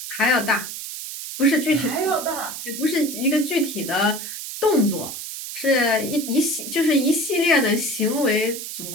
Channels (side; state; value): right; noise; hiss, 8 dB below the sound